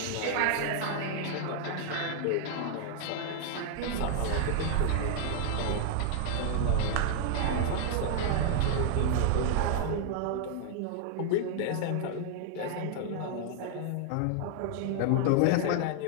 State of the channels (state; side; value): different; both; correlation 0.00